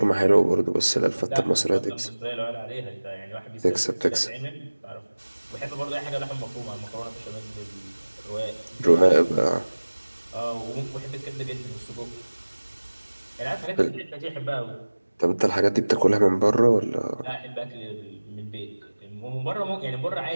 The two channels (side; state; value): both; inverted; correlation -1.00